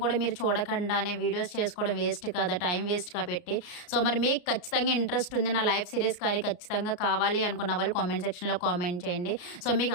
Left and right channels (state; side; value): late; right; 33 ms